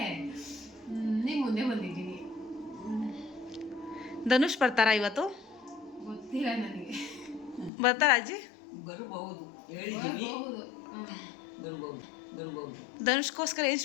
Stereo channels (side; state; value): right; drops out; at 7.7 s